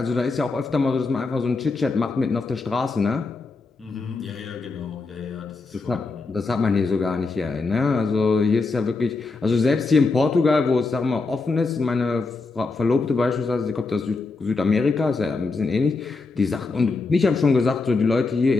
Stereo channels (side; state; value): right; quieter; 3.9 dB